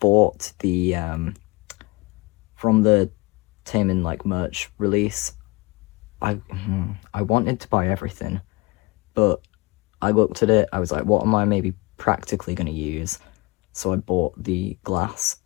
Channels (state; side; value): quieter; right; 24.4 dB